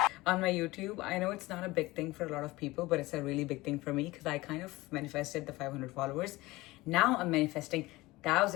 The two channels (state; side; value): quieter; right; 20.1 dB